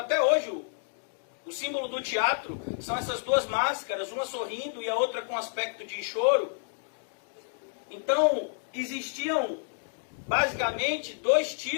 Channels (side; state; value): right; silent; digital silence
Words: hoje o símbolo do teatro são essas duas máscaras, uma sorrindo e a outra com aspecto de choro. Então, existiam basicamente dois